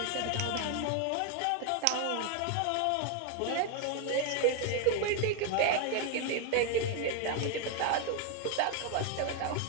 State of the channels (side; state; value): both; different; correlation 0.01